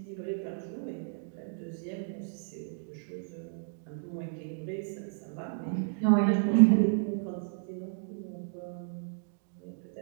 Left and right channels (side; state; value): left; silent; digital silence